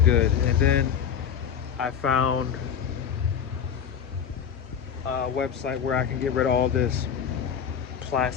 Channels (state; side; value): quieter; right; 7.8 dB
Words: And then I found a website where I can get rid of all this